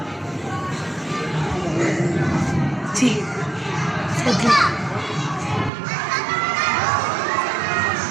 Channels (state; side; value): drops out; left; at 5.7 s